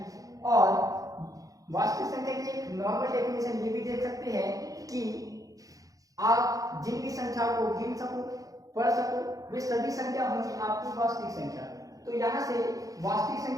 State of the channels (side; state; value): left; late; 0.17 ms